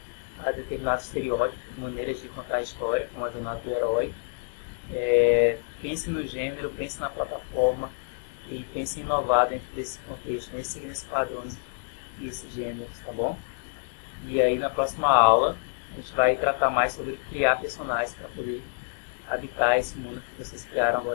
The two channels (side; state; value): right; silent; digital silence